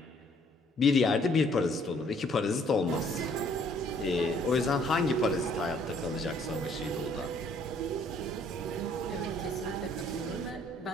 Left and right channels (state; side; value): normal; both; correlation 0.62